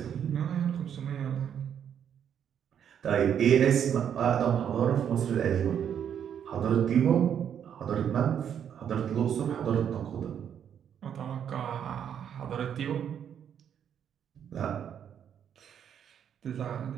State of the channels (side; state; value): left; quieter; 8.7 dB